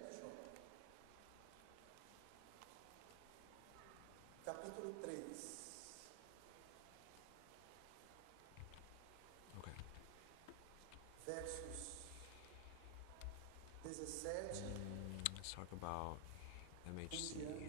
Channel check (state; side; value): different; both; correlation 0.00